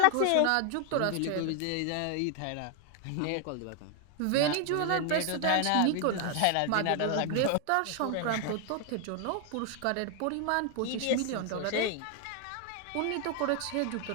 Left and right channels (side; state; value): both; different; correlation 0.00